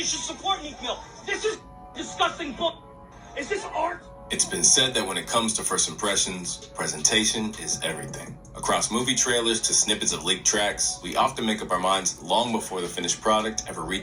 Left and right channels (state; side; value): identical; both; correlation 1.00